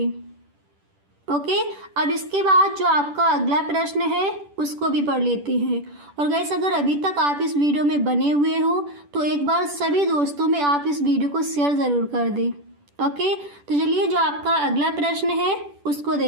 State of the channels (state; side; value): late; left; 10 ms